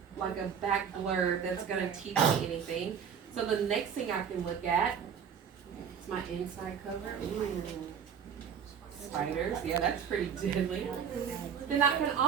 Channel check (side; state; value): left; quieter; 7.5 dB